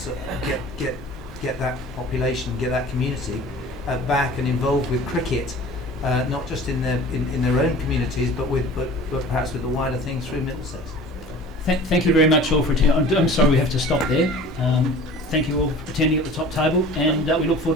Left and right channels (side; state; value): both; normal; correlation 0.43